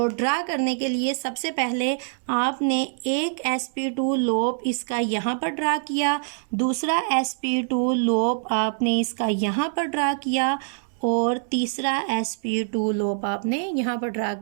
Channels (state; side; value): silent; left; digital silence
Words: ड्रा करने के लिए सबसे पहले आपने एक sp2 लोब इसका यहाँ पर ड्रा किया, दूसरा sp2 लोब आपने इसका यहाँ पर ड्रा किया, और तीसरा sp2 लोब आपने यहाँ पर ड्रा